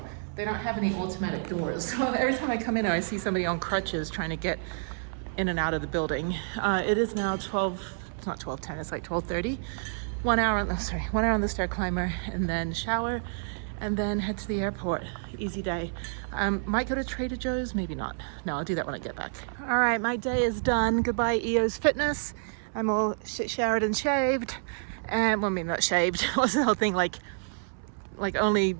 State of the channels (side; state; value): left; silent; 59 dB below the other